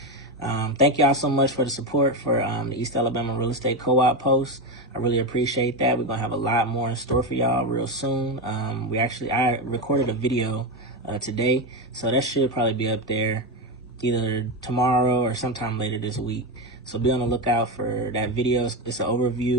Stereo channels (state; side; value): normal; both; correlation 0.13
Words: Thank y'all so much for the support for the East Alabama Real Estate Co-op post. I really appreciate that. We're gonna have a lot more in store for y'all real soon. I recorded a video today, so that should probably be up there either tomorrow or sometime later this week. So be on the lookout for that video. It's a